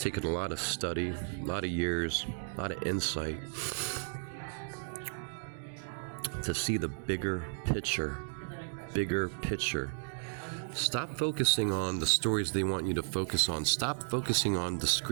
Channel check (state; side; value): silent; left; digital silence